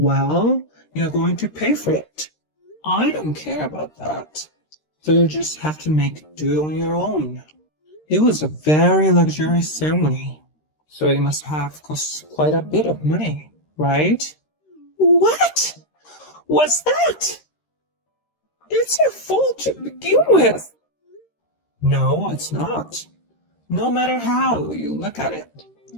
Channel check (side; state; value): right; late; 13 ms